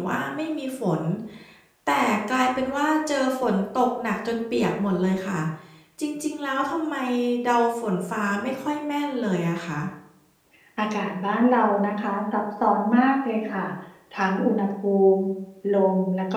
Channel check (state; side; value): identical; both; correlation 1.00